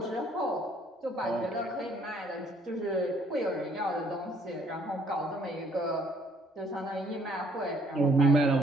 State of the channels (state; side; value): normal; both; correlation 0.63